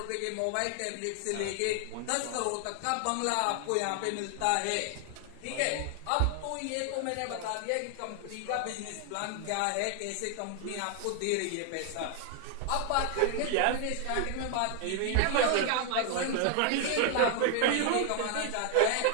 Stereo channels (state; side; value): different; both; correlation 0.00